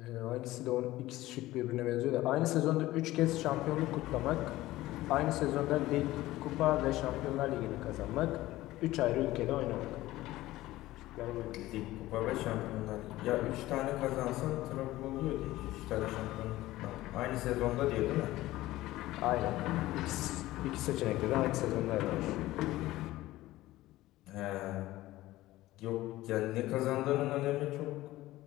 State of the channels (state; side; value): quieter; right; 16.8 dB